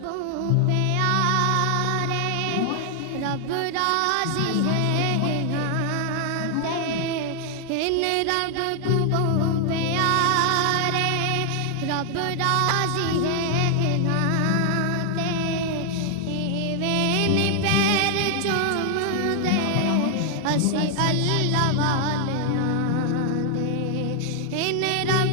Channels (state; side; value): different; both; correlation 0.00